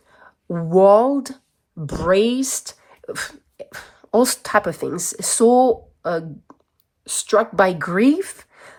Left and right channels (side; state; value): both; identical; correlation 1.00